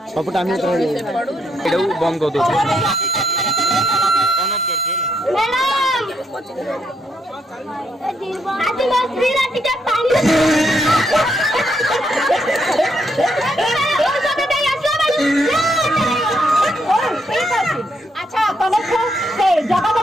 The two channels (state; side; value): normal; both; correlation 0.76